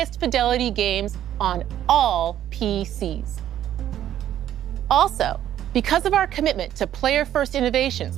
fidelity games on all PCs. Also, because of our commitment to player-first innovations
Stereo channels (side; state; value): left; quieter; 11.4 dB